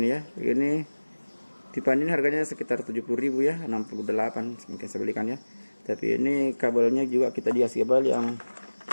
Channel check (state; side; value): inverted; both; correlation -1.00